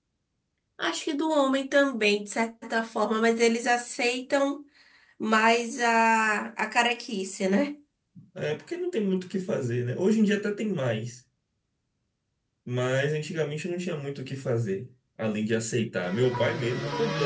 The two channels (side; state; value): both; identical; correlation 1.00